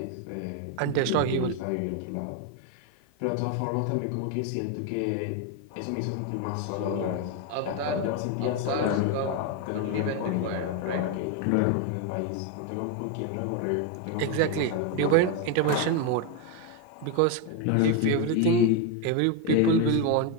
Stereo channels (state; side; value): different; both; correlation 0.02